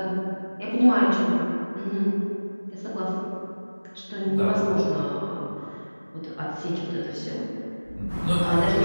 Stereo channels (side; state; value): both; inverted; correlation -1.00